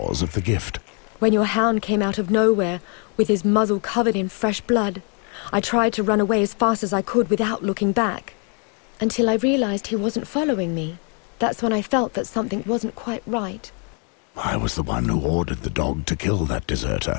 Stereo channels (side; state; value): right; quieter; 39.4 dB